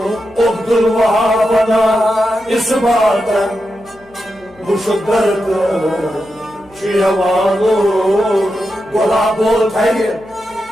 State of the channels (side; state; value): left; noise; hum, 28 dB below the sound